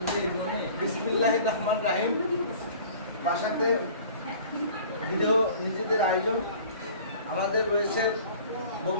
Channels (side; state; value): both; inverted; correlation -0.46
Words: বিসমিল্লাহির রহমানির রহিম। বাসাতে ভিডিও নিজেদের আয়োজন। আমাদের রয়েছে